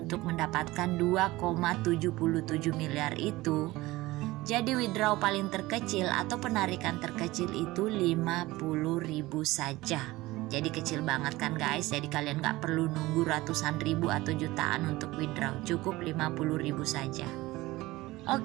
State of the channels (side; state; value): left; quieter; 19.2 dB